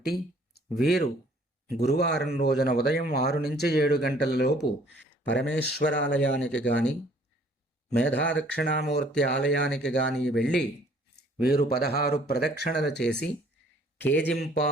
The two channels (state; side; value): normal; both; correlation 0.58